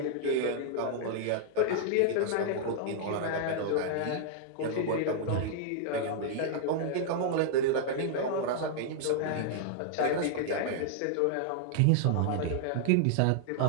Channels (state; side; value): different; both; correlation -0.01